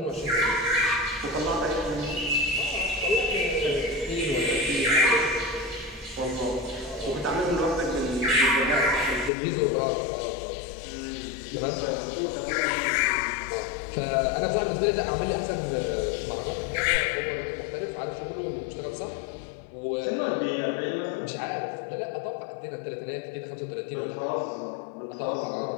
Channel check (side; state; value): right; drops out; at 9.3 s